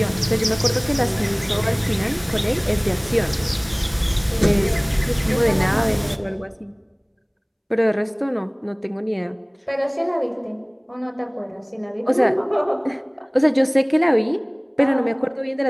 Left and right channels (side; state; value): both; identical; correlation 1.00